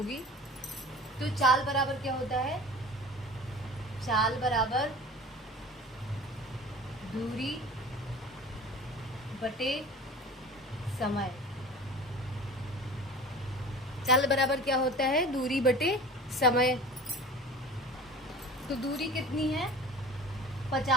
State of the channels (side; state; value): both; normal; correlation 0.40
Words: तो चाल बराबर क्या होता है, चाल बराबर दूरी बटे समय। चाल बराबर क्या होता है, दूरी बटे समय। तो दूरी कितनी है,